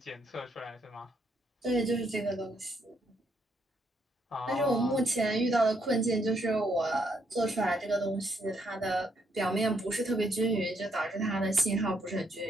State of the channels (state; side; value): normal; both; correlation 0.74